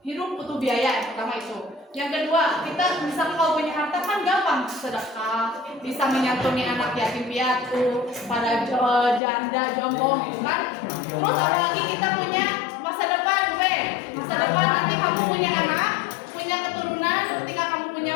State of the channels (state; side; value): drops out; right; at 9.2 s